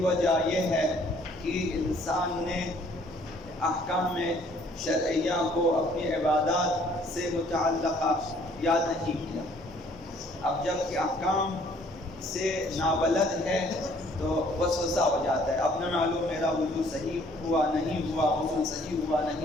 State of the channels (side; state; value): right; noise; hum, 27 dB below the sound